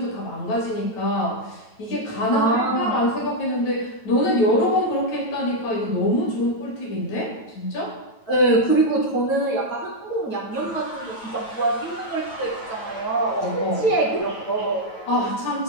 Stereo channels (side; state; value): right; late; 9.1 ms